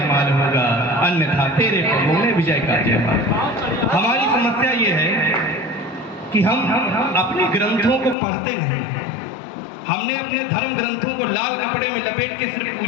होगा, अन्यथा तेरे पगों में विजय का जयमाल। हमारी समस्या ये है कि हम अपने ग्रंथों को पढ़ते नहीं, हमने अपने धर्म ग्रंथों को लाल कपड़े में लपेट के सिर्फ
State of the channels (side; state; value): right; drops out; at 8.2 s